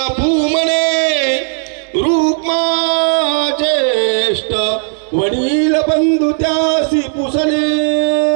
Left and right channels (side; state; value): left; silent; digital silence